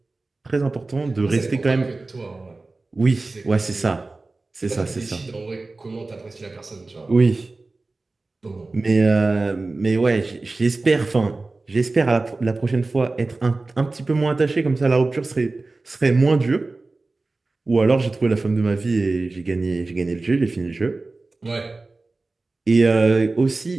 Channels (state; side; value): quieter; left; 3.4 dB